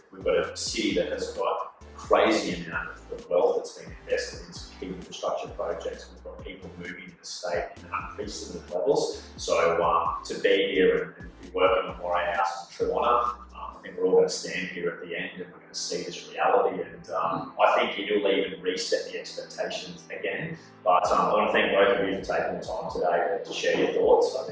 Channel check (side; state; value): both; identical; correlation 1.00